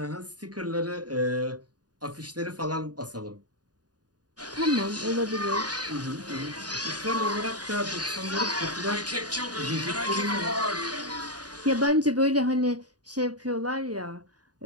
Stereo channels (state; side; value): late; left; 0.69 ms